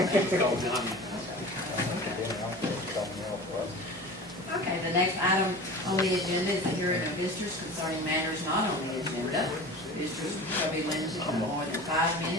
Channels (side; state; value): both; normal; correlation 0.36